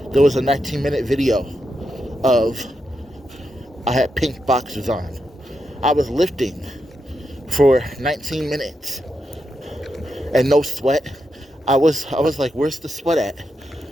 there was a 19-minute video of I had pink boxers on. I was lifting for 19 minutes and no sweat. I was like, where's the sweat at?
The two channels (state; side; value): normal; both; correlation 0.85